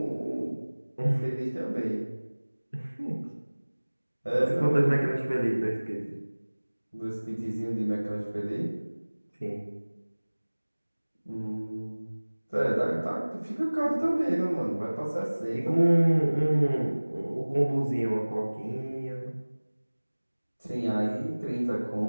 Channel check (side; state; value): both; inverted; correlation -1.00